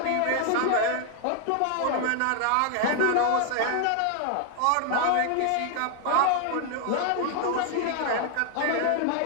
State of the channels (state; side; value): different; both; correlation 0.00